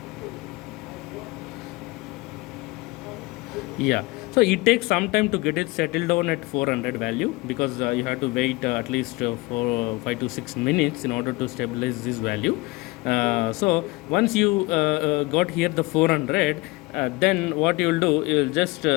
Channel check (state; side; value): quieter; right; 23.1 dB